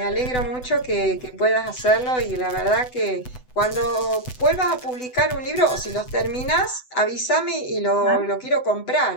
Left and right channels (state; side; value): late; right; 7.9 ms